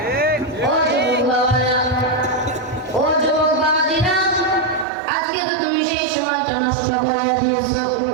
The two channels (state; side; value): drops out; left; at 4.9 s